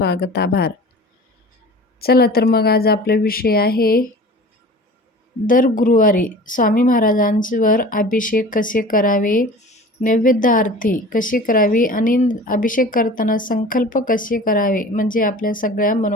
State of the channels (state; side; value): normal; both; correlation 0.40